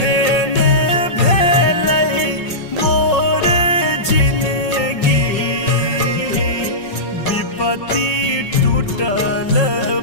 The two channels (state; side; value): late; right; 5.5 ms